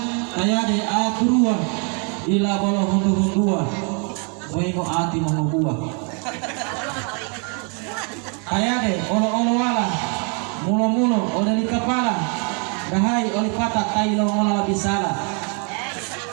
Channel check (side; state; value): left; quieter; 37.3 dB